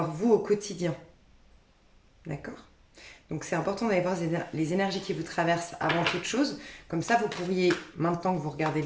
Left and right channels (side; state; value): both; identical; correlation 1.00